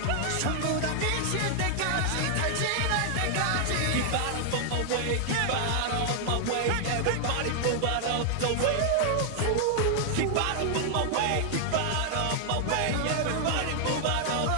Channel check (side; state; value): left; late; 9.2 ms